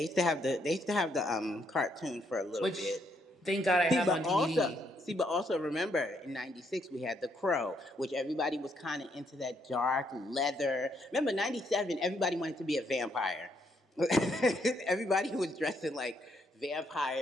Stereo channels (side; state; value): both; normal; correlation 0.73